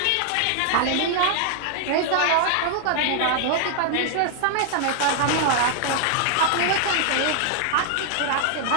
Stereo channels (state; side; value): different; both; correlation 0.00